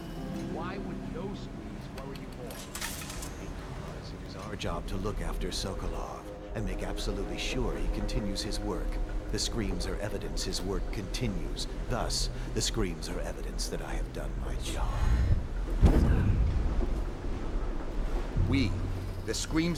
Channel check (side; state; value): both; identical; correlation 1.00